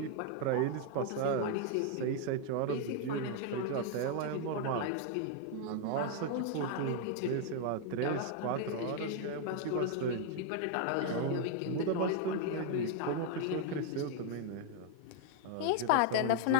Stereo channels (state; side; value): different; both; correlation 0.00